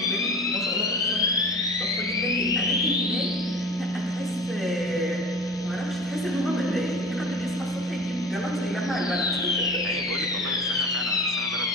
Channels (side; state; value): both; normal; correlation 0.37